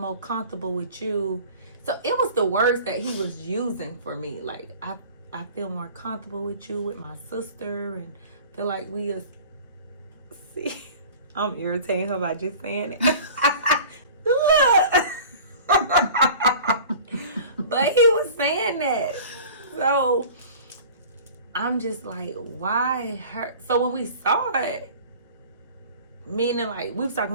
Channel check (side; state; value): both; inverted; correlation -0.42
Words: comfortable with you. So it was the words that he was using for me. Like, I feel more comfortable with you, with my sister, and feel like we are. See, I'm irritating her by just saying it. Look. But he was saying that. So I'm just like, why her? So when we saw it, meaning like we was